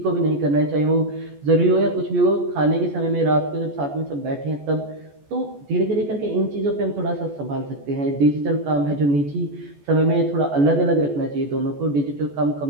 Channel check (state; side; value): late; left; 14 ms